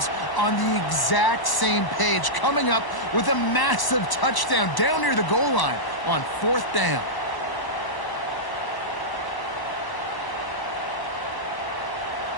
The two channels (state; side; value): late; right; 1.0 ms